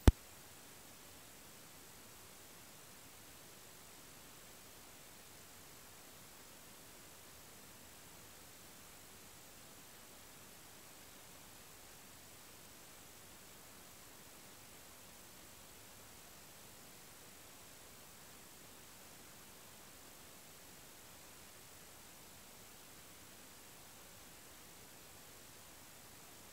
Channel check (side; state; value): both; identical; correlation 1.00